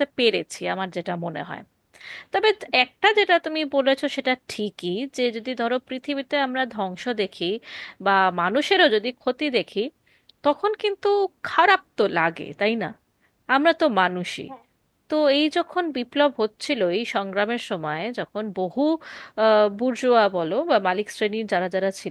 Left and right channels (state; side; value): identical; both; correlation 1.00